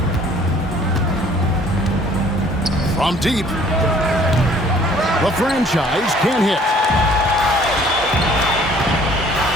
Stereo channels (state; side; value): normal; both; correlation 0.56